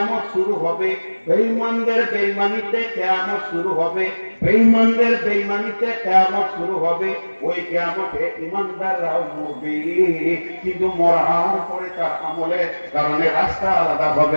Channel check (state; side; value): inverted; both; correlation -1.00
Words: শুরু হবে, বেঈমানদের বেঈমানিতে কিয়ামত শুরু হবে, বেঈমানদের বেঈমানিতে কিয়ামত শুরু হবে। ওই কিয়ামতে ঈমানদাররাও মরবে, কিন্তু মরার পরে তার আমলের কারণে রাস্তা আলাদা